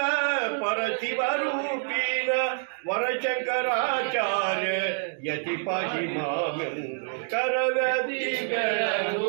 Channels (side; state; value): left; silent; 60 dB below the other